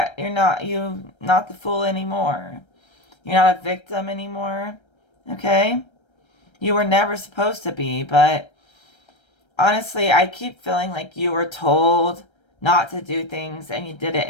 not the fool anymore. You're not a victim anymore. Okay? You were never supposed to be, but honestly, I keep feeling like you were told not to do things and you did it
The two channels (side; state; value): right; late; 1.3 ms